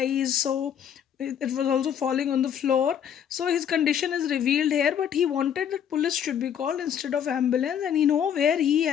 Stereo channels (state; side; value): quieter; right; 8.8 dB